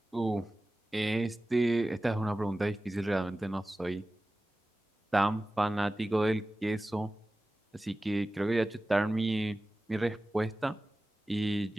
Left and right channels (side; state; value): both; normal; correlation 0.96